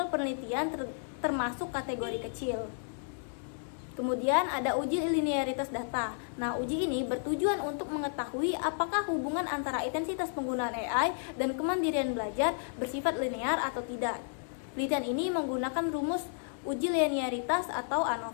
penelitian termasuk kategori kecil. Kemudian ada uji linearitas data. Nah, uji ini bertujuan untuk mengetahui apakah hubungan antara intensitas penggunaan AI dan kemandirian belajar bersifat linear atau tidak. Penelitian ini menggunakan rumus uji linearitas atau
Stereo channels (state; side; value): silent; right; digital silence